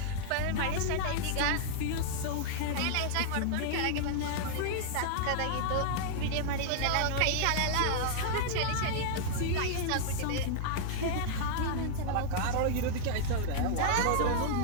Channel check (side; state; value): both; different; correlation -0.01